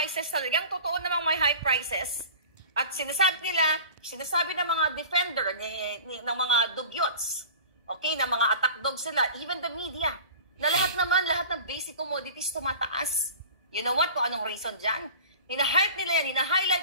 talagang totoo namang may high prices, at sinasabi ng mga defender, ng mga dugyots, okay, ng mga attack dog sila, even the media, na lahat ng basic commodities tumataas. You know what? Kung anong reason dyan? Hina-hype nila yan,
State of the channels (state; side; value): inverted; both; correlation -0.39